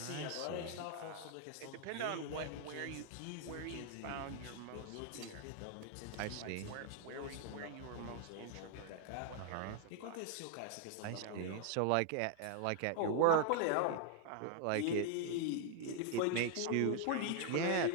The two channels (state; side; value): different; both; correlation 0.00